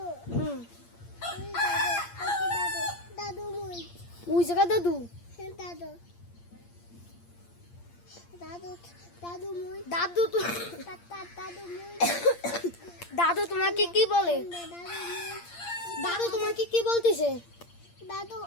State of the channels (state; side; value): late; right; 8.7 ms